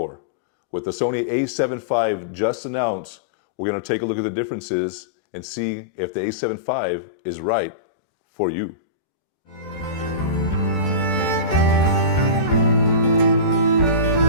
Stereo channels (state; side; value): late; right; 14 ms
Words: With the Sony A7V just announced, we're going to take a look at the differences and see if the A7V is right for you.